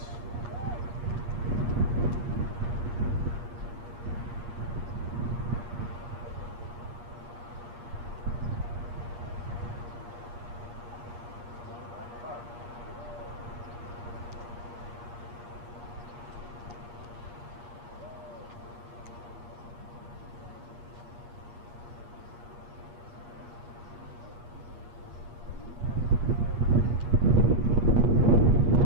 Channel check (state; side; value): late; left; 8.4 ms